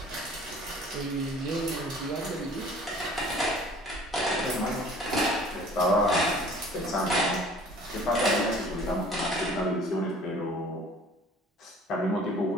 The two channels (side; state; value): both; normal; correlation 0.49